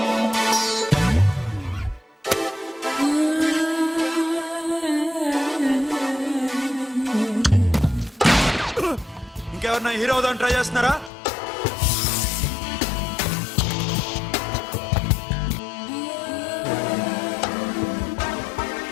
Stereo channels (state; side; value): drops out; right; at 11.1 s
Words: ఇంకెవరన్నా హీరో అవుదాం ట్రై చేస్తున్నారా?